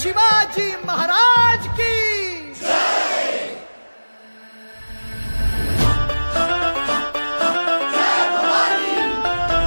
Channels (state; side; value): inverted; both; correlation -1.00